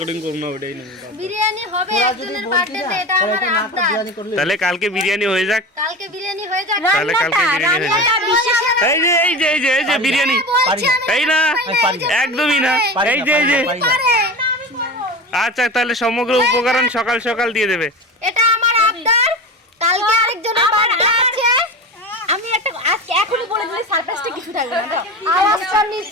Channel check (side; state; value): both; normal; correlation 0.28